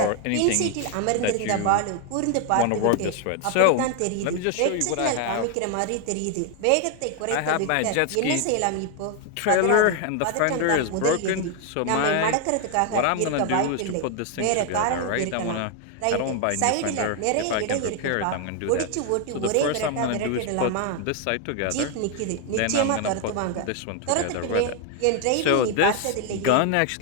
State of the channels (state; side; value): different; both; correlation 0.01